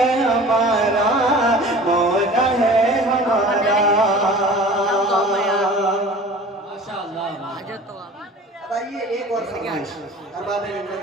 हमारा, मौला है हमारा। अब आइए एक और फरमाइश अरबाब मिल्लत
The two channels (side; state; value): both; normal; correlation 0.42